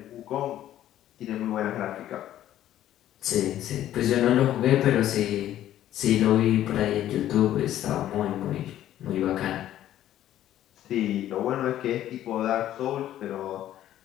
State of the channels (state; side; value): quieter; right; 12.4 dB